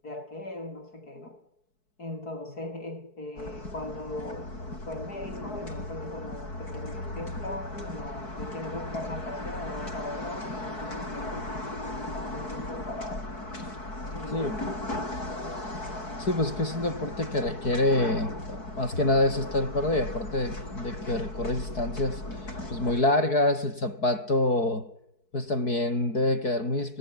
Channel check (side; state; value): right; late; 4.6 ms